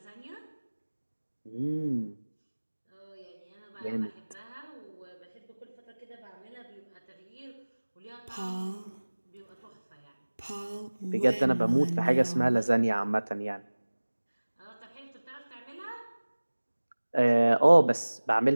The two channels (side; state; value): both; inverted; correlation -1.00